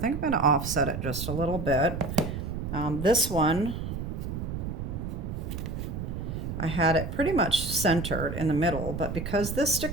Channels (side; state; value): right; noise; rumble, 5 dB below the sound